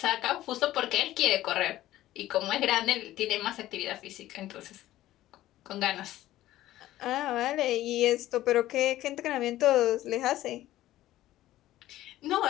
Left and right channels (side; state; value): right; quieter; 14.7 dB